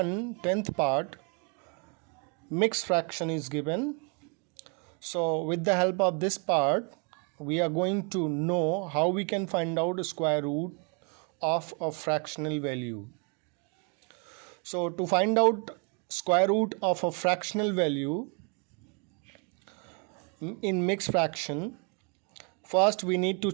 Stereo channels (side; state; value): left; quieter; 36.4 dB